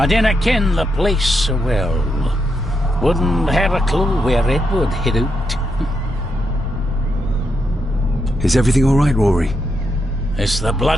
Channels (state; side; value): normal; both; correlation 0.82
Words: dinna ken the place so well. Wouldn't have a clue where it would hit out. Is everything all right, Rory? It's the